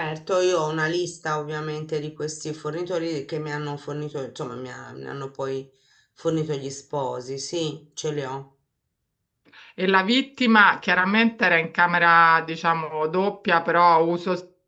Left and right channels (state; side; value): identical; both; correlation 1.00